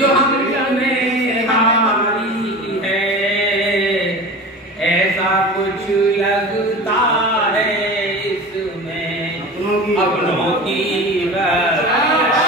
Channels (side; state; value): both; normal; correlation 0.33